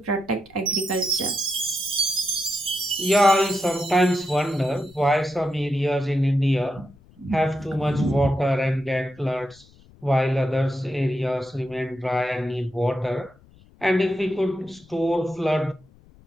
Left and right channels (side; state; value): left; noise; rumble, 27 dB below the sound